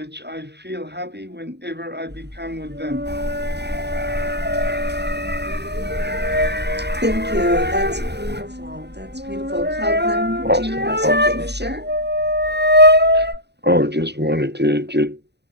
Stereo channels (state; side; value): late; left; 0.49 ms